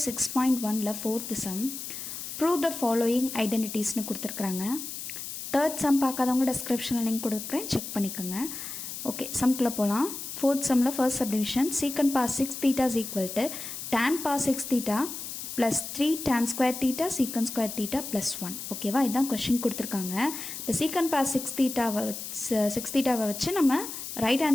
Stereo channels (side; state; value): left; noise; hiss, 8 dB below the sound